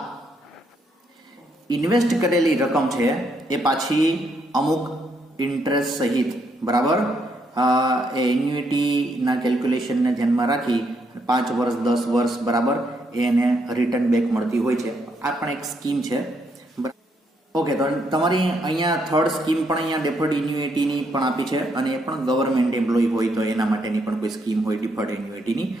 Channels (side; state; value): both; normal; correlation 0.75